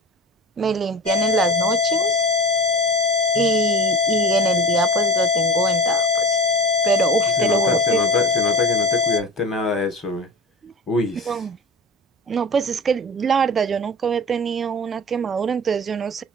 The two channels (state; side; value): normal; both; correlation 0.32